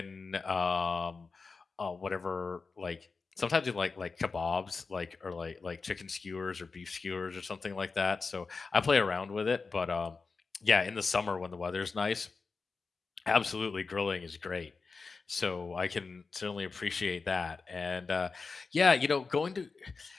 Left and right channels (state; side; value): quieter; right; 4.5 dB